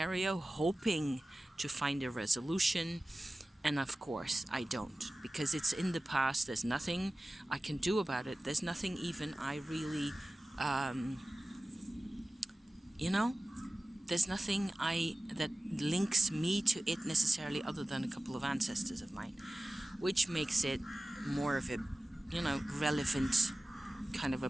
hoping to find a resolution. And of course, I don't, because it's in the past. There's nothing I can do about it. There's nothing even I really, there's nothing that links me to it necessarily, other than a couple of ancestors of mine, which makes it more of a, relevant kind of a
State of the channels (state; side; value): normal; both; correlation 0.96